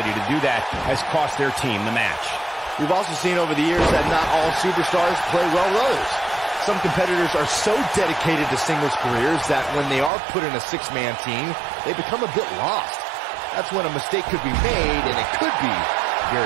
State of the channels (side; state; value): left; drops out; at 10.1 s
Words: to do that has cost their team the match. We've also seen over the years that not all superstars play well with others. Some competitors are so dedicated to singles careers that when they are put in a six-man team, they become a bit lost. That's when a mistake could be made, and it could be